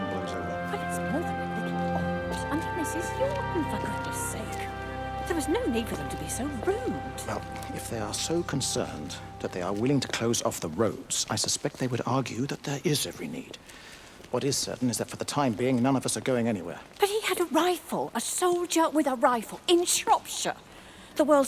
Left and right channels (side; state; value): both; identical; correlation 1.00